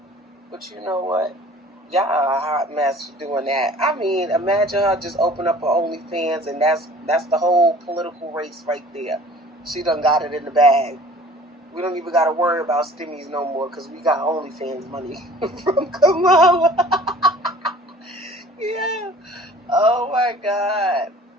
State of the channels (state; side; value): normal; both; correlation 0.48